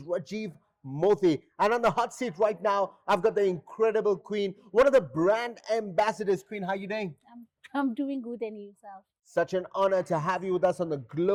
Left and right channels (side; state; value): both; identical; correlation 1.00